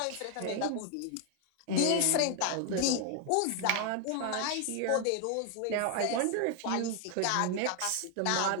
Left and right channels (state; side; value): different; both; correlation 0.00